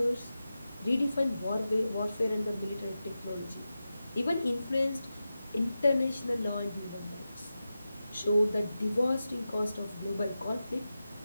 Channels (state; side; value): inverted; both; correlation -0.92